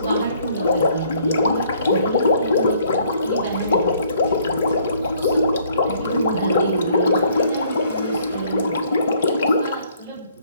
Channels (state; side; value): inverted; both; correlation -0.63